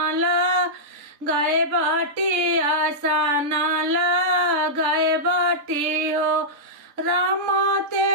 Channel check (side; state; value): left; late; 3.6 ms